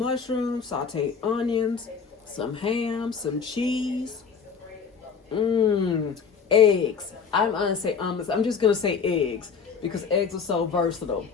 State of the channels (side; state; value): right; quieter; 6.0 dB